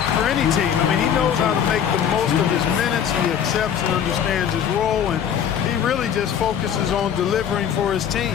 for any team. I mean, he knows how to make the most of his minutes. He accepts and understands his role, and he really just focuses on delivering for his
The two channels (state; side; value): quieter; right; 8.7 dB